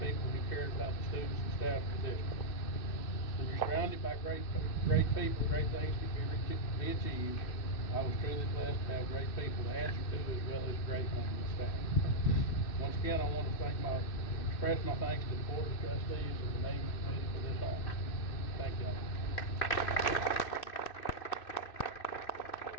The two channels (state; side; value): late; right; 2.6 ms